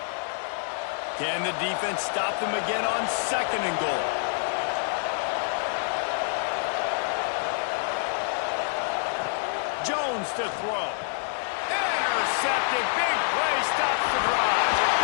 Can the defense stop them again on 2nd and goal? Jones to throw. Intercepted. Big play stops the drive.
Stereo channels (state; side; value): silent; right; digital silence